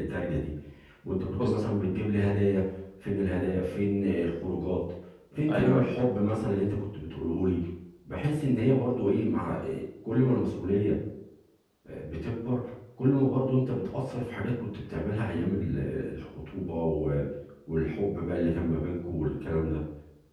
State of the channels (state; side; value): identical; both; correlation 1.00